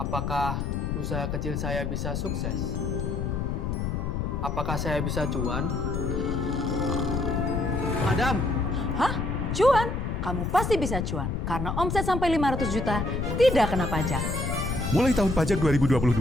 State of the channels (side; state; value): left; noise; rumble, 1 dB below the sound